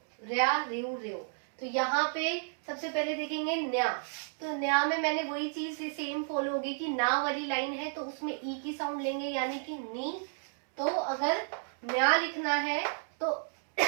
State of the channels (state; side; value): silent; left; digital silence